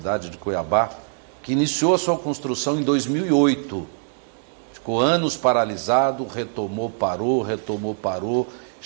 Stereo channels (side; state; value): left; silent; digital silence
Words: de Cuiabá, que iniciou a sua construção em 2008. Ficou anos paralisado, retomou, parou.